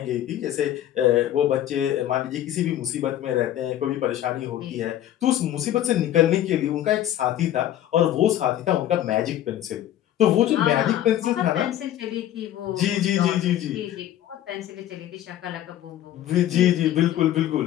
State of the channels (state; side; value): quieter; right; 12.2 dB